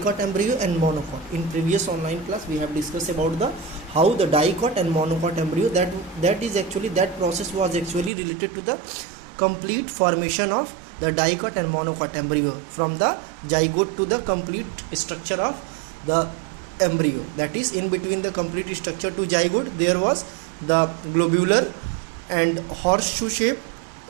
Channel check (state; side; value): drops out; left; at 8.1 s